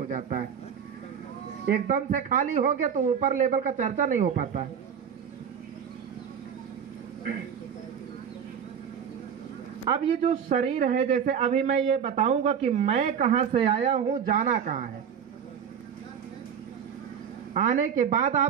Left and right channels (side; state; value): left; quieter; 7.7 dB